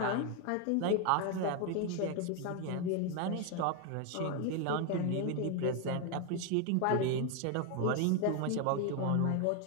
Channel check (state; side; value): different; both; correlation 0.01